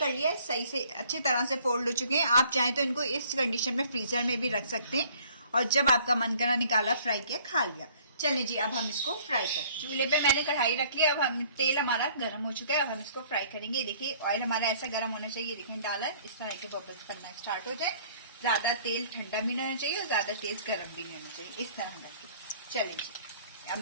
लिया है, सही से अच्छी तरह से फोल्ड हो चुके हैं। आप चाहें तो इनको इस कंडीशन में फ्रीजर में भी रख सकते हैं और जब आपका मन करा निकाला, फ्राई किया, खा लिया। चलिए जी, अब हम इसको फ्राई करते हैं। चूल्हे पे मैंने कढ़ाई रख लिया, अब हम तेल हमारा गर्म हो चुका है, अब हम इसको फ्राई करेंगे। देखिए ऑयल हमारा ऐसा गर्म होना चाहिए, देखिए डाला इस तरह के बबल्स बनना स्टार्ट हो जाए। ज्यादा तेल ठंडा भी नहीं होना चाहिए और ज्यादा तेज गर्म भी नहीं होना चाहिए, इस तरह हम रखें। चलिए जी, अब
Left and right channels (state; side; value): inverted; both; correlation -0.57